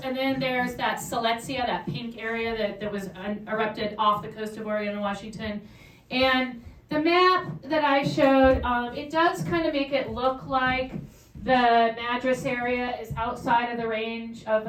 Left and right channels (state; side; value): identical; both; correlation 1.00